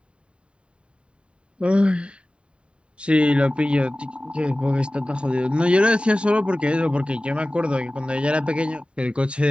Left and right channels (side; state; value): left; late; 0.055 ms